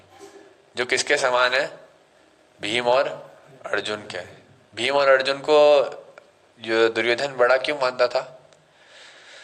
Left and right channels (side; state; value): both; identical; correlation 1.00